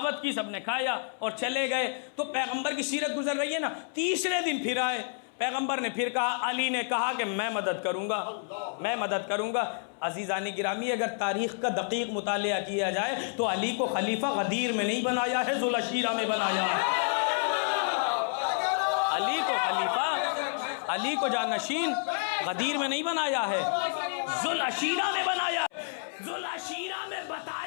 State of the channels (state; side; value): silent; right; 58 dB below the other